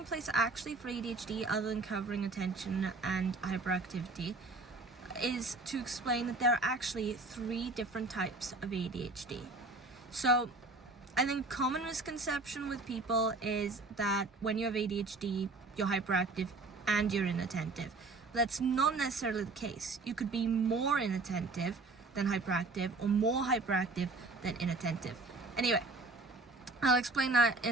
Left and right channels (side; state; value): left; quieter; 3.4 dB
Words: place actually for ADHD, other than covering attention and hyperactivity, is to explain that there are actually 3 different types of ADHD. So I think common misconception with people is that when you have ADHD, you're hyperactive and you're inattentive. That's not necessarily the case. You could be more inattentive than hyperactive or more hyperactive than inattentive. Anyway, I'll explain that